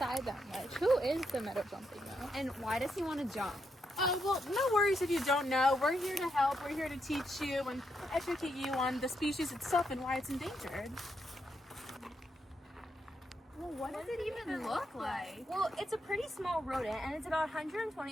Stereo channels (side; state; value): both; normal; correlation 0.81